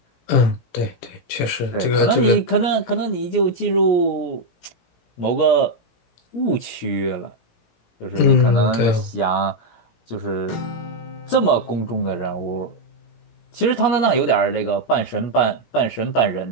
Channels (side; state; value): right; late; 17 ms